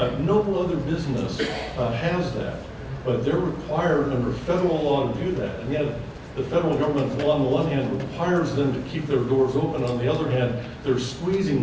No other business has that, but they're required under federal law to do that. And yet, the federal government, on the one hand, requires them to keep their doors open. On the other hand, they're squeezing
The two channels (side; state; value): both; identical; correlation 1.00